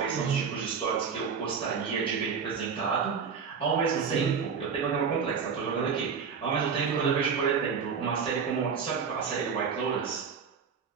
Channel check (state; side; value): quieter; left; 6.2 dB